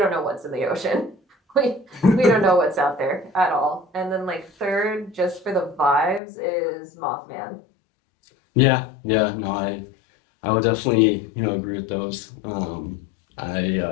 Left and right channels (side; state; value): right; drops out; at 6.2 s